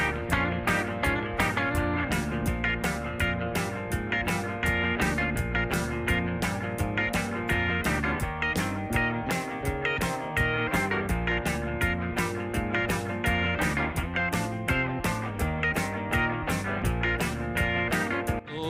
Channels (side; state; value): both; identical; correlation 1.00